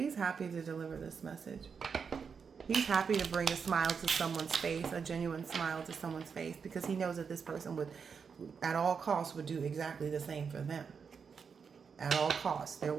happy to deliver this message. He's happy to bring a smile to someone's face, a genuine smile to someone's face, because he knows that this person would, at all costs, would do exactly the same for them. At all costs. They're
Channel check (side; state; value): left; quieter; 6.1 dB